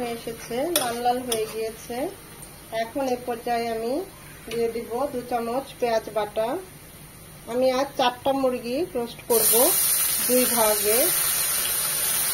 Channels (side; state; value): both; identical; correlation 1.00